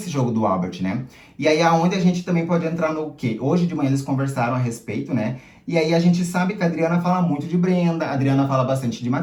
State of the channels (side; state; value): both; identical; correlation 1.00